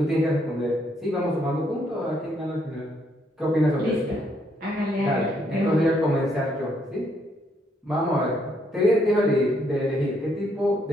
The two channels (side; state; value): both; normal; correlation 0.72